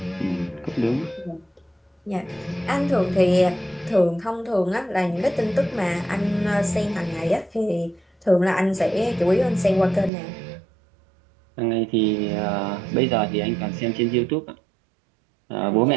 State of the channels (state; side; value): drops out; left; at 10.1 s